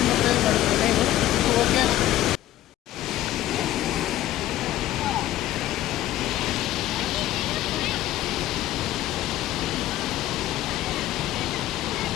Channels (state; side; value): quieter; right; 14.1 dB